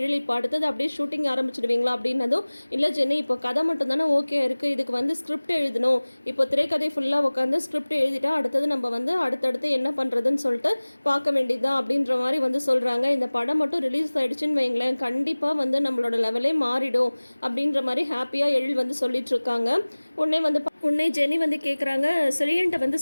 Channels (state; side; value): inverted; both; correlation -1.00